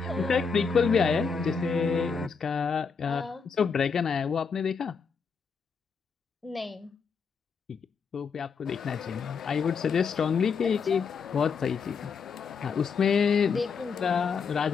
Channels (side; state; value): right; quieter; 5.7 dB